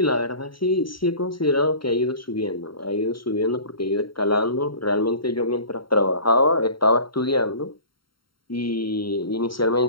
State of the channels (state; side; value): late; right; 0.73 ms